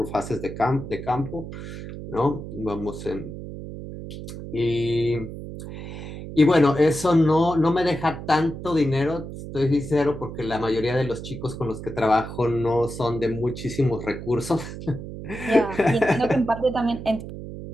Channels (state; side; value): noise; right; hum, 10 dB below the sound